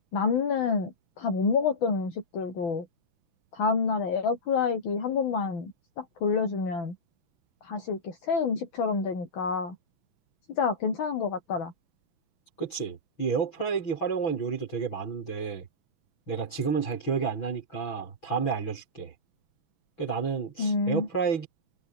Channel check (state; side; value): late; right; 6.1 ms